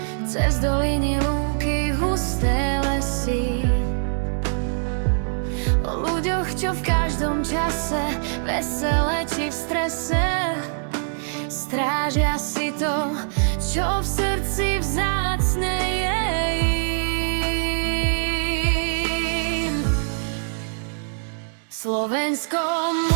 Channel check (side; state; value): left; silent; 63 dB below the other